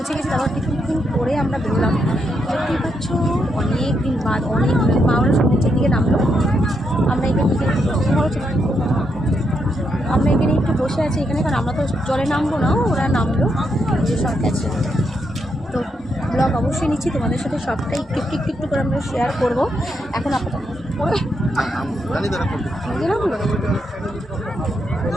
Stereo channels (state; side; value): normal; both; correlation 0.80